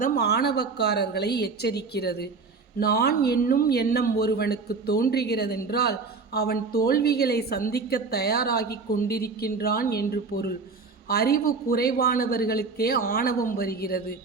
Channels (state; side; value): quieter; left; 4.5 dB